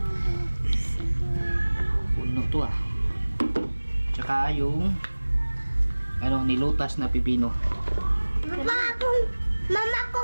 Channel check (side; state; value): both; inverted; correlation -1.00